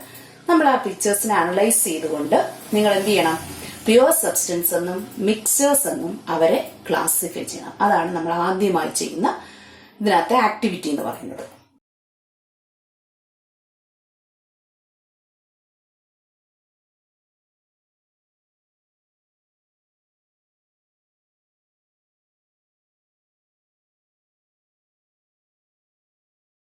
നമ്മൾ ആ പിക്ചേഴ്സിനെ അനലൈസ് ചെയ്തുകൊണ്ട് നിങ്ങൾ എന്ത് ചെയ്യണം? പ്യുവർ സബ്സ്റ്റൻസ് എന്നും മിക്സേഴ്സ് എന്നും അവരെ ക്ലാസിഫൈ ചെയ്യണം. അതാണ് നമ്മൾ ആദ്യമായി ചെയ്യുന്ന ഇതിനകത്തെ ആക്ടിവിറ്റി എന്ന് പറയുന്നത്.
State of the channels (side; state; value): both; identical; correlation 1.00